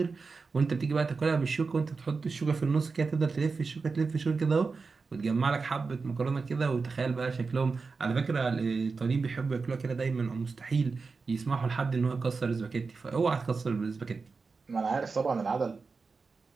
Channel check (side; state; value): left; quieter; 4.5 dB